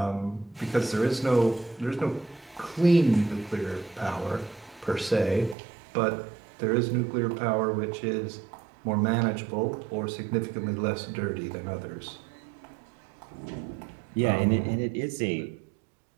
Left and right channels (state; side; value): drops out; left; at 5.6 s